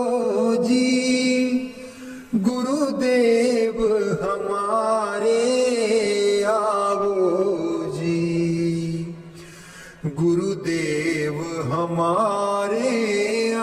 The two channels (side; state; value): both; identical; correlation 1.00